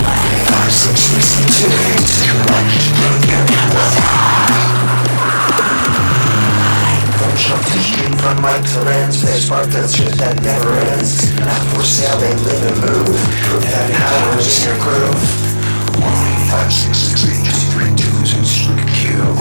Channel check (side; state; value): both; inverted; correlation -1.00